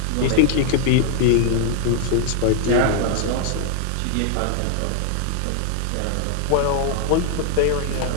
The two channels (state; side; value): different; both; correlation 0.00